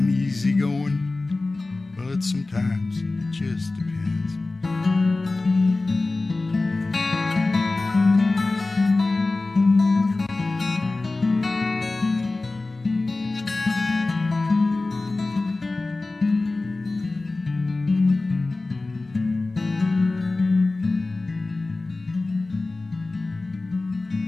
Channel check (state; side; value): quieter; right; 3.3 dB